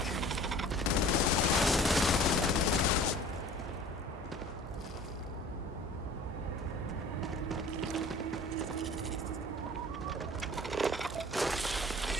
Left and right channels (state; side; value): normal; both; correlation 0.45